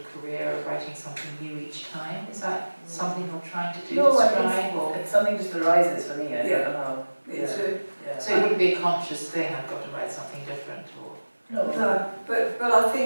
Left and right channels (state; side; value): inverted; both; correlation -1.00